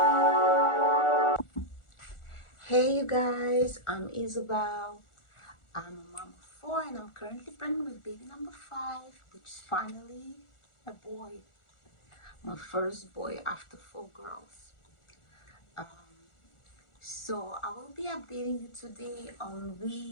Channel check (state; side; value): late; right; 1.4 ms